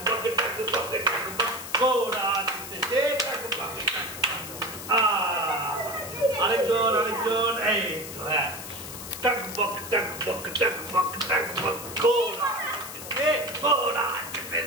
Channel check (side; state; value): left; noise; hiss, 11 dB below the sound